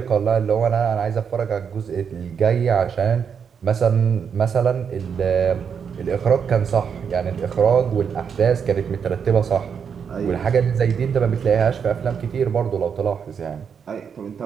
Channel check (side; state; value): left; quieter; 6.9 dB